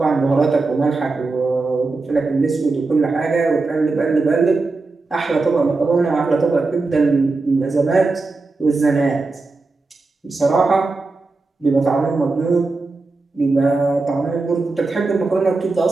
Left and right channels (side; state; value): left; quieter; 3.6 dB